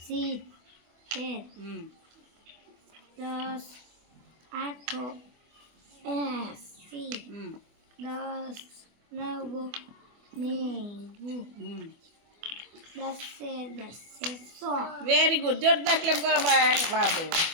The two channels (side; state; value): left; late; 24 ms